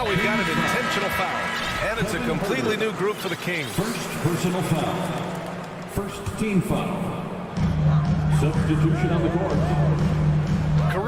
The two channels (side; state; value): both; identical; correlation 1.00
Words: we've got an intentional foul. And it's a completely new group for the Kings. First personal foul. First team foul. Substitution on the court.